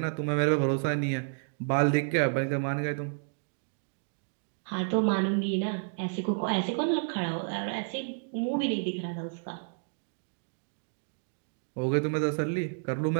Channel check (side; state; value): left; silent; digital silence